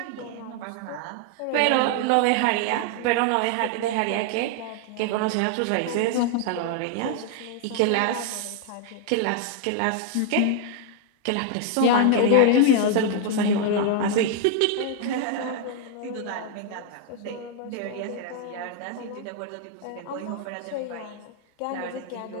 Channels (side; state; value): both; different; correlation 0.00